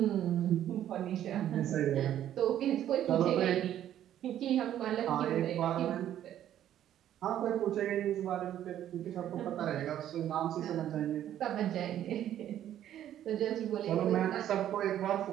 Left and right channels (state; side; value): quieter; left; 11.3 dB